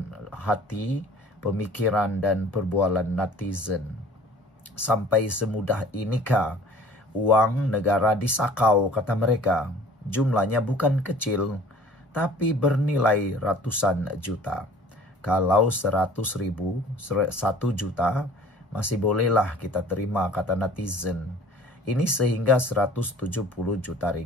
hati, pemikiran dan perbualan netizen. Sampai semudah inikah uang negara disakau, kata mereka? Jumlahnya bukan kecil, tapi bernilai ratusan juta. Kalau 100.000, 1 juta, masih bolehlah kita terima, kata netizen. Ini sehingga 170 juta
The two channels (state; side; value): normal; both; correlation 0.49